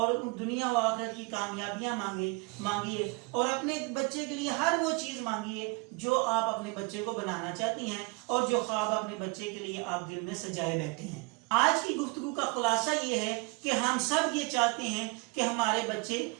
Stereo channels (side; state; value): left; quieter; 27.7 dB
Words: دنیا و آخرت کی کامیابیاں مانگیے، اور اپنے بچے کے لیے ہر وہ چیز مانگیے جو آپ اپنے بچے کو بنانا چاہتی ہیں، اور جو خواب اپنے بچے کے لیے آپ دل میں سجائے بیٹھے ہیں. آج کی گفتگو کا خلاصہ یہ ہے کہ ہم سب یہ چاہتے ہیں کہ ہمارے بچے